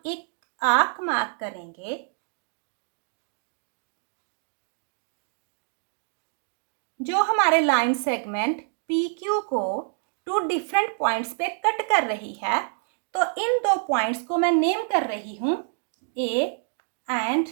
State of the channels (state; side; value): silent; left; 60 dB below the other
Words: एक आर्क मार्क करेंगे जो हमारे लाइन सेगमेंट PQ को टू डिफरेंट पॉइंट्स पे कट कर रही है. तो इन दो पॉइंट्स को मैं नेम कर रही हूं A एंड